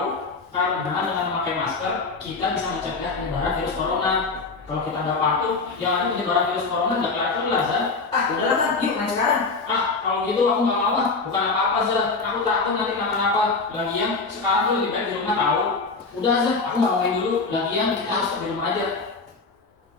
Karena dengan memakai masker, kita bisa mencegah penyebaran virus corona. Kalau kita nggak patuh, yang ada penyebaran virus corona nggak kelihatan lah Zah. Udahlah Tan, yuk main sekarang. Kalau gitu aku nggak mau bukan apa-apa Zah. Aku takut nanti kenapa-napa. Lagian sekarang tuh lebih baik di rumah tahu. Udah Zah, aku nggak mau main dulu. Lagian kita harus di rumah aja.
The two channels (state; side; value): quieter; right; 4.1 dB